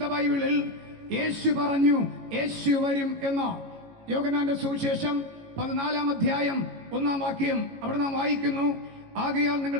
ബൈബിളിൽ യേശു പറഞ്ഞു യേശു വരും എന്ന്. യോഹന്നാന്റെ സുവിശേഷം 14 അധ്യായം 1 വാക്യം. അവിടെ നാം വായിക്കുന്നു, ആകയാൽ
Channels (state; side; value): late; left; 18 ms